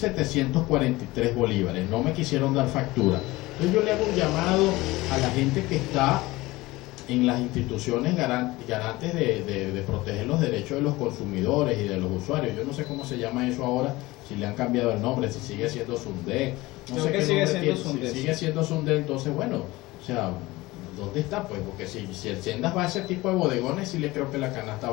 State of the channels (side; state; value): right; quieter; 20.0 dB